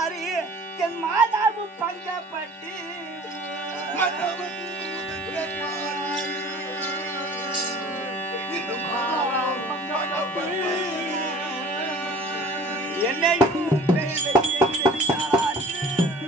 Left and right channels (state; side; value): normal; both; correlation 0.47